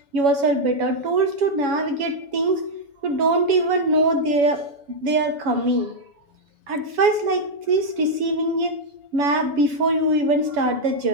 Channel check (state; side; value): late; left; 7.1 ms